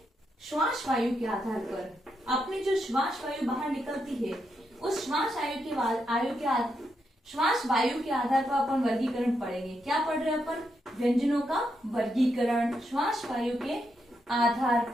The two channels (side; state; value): both; normal; correlation 0.82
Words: श्वास वायु के आधार पर। अपनी जो श्वास वायु बाहर निकलती है उस श्वास वायु के आधार पर अपन वर्गीकरण पढ़ेंगे। क्या पढ़ रहे हैं अपन? व्यंजनों का वर्गीकरण श्वास वायु के आधार